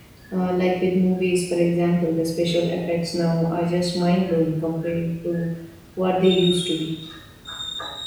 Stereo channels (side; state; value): both; identical; correlation 1.00